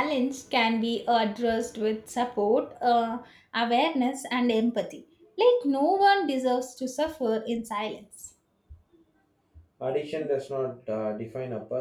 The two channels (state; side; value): identical; both; correlation 1.00